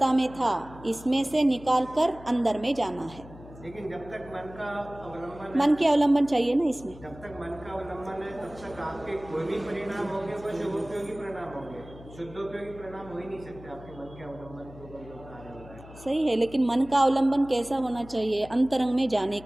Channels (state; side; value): noise; left; hum, 18 dB below the sound